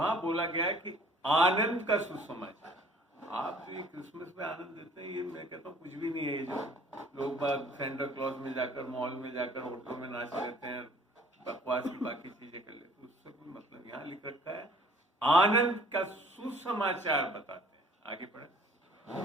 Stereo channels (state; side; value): normal; both; correlation 0.54